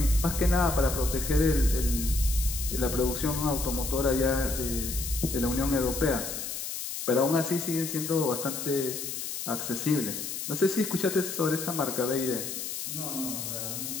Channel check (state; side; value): noise; left; hiss, 5 dB below the sound